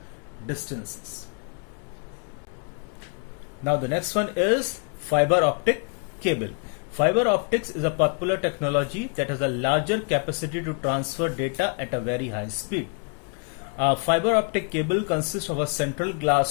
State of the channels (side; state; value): right; quieter; 37.9 dB